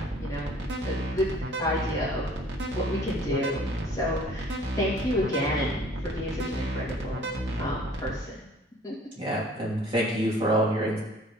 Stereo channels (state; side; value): normal; both; correlation 0.53